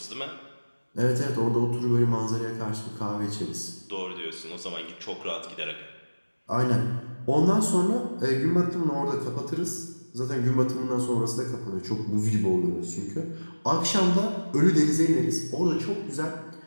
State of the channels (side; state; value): both; inverted; correlation -1.00